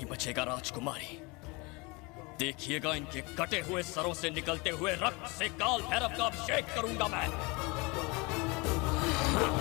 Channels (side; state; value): right; quieter; 26.9 dB